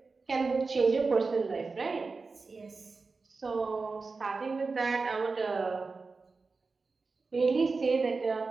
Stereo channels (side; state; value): left; quieter; 4.2 dB